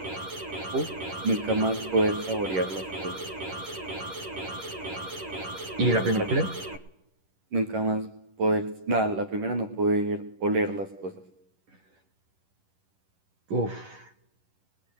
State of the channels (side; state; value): left; late; 11 ms